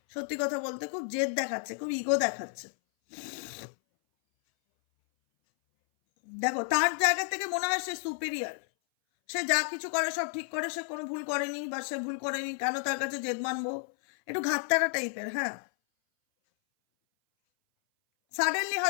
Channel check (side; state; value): right; silent; 57 dB below the other